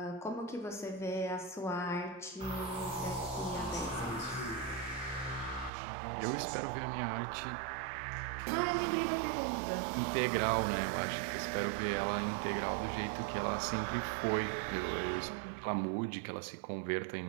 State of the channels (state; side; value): drops out; left; at 5.7 s